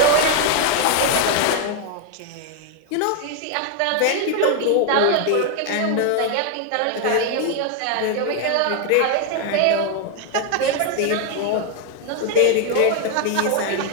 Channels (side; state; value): both; different; correlation 0.01